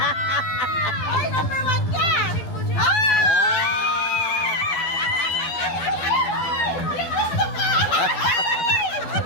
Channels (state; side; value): late; right; 12 ms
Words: Ay, number 1 ka!